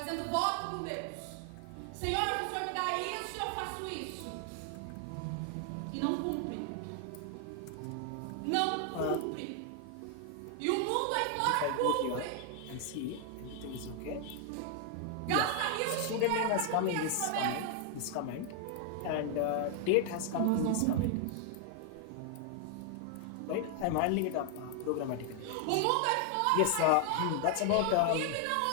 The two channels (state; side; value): different; both; correlation 0.00